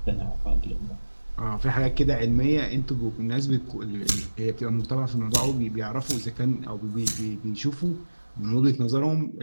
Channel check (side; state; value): both; inverted; correlation -1.00